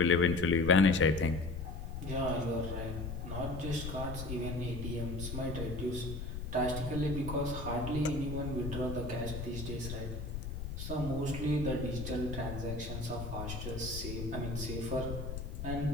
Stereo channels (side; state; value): left; noise; rumble, 6 dB below the sound